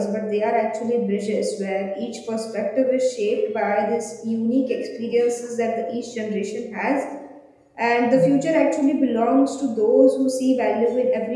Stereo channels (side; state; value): both; identical; correlation 1.00